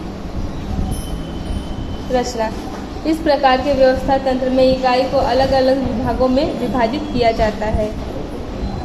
रचना: इस प्रकार के व्यवस्था तंत्र में इकाई को अलग अलग विभागों में विभाजित किया जाता है।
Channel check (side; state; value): both; identical; correlation 1.00